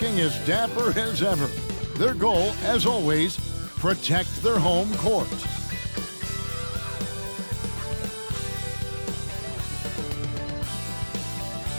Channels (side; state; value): both; inverted; correlation -1.00